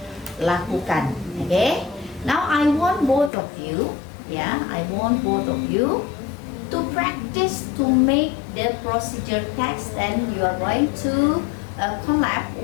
lakukan. Okay. Now I want both of you, yeah, I want both of you to practice to make the procedure text, and you are going to collab,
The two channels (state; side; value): drops out; right; at 3.3 s